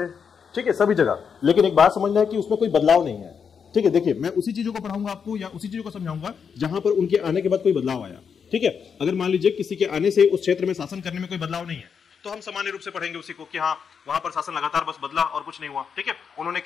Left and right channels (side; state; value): right; quieter; 6.6 dB